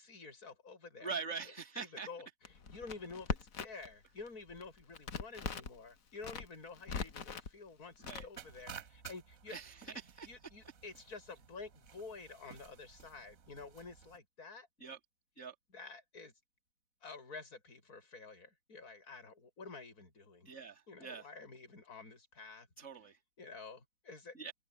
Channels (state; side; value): late; right; 4.1 ms